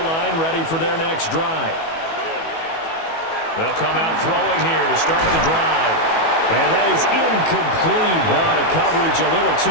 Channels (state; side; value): late; right; 18 ms